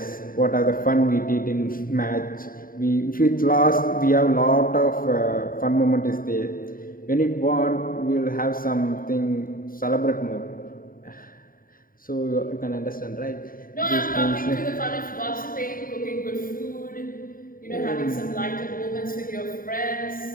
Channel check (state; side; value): late; right; 0.41 ms